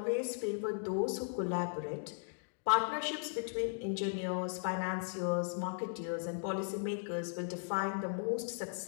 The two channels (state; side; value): silent; right; digital silence